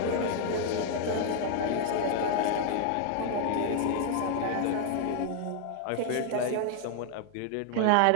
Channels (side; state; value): both; different; correlation 0.00